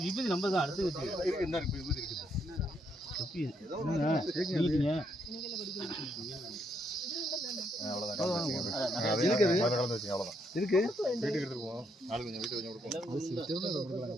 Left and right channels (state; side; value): normal; both; correlation 0.75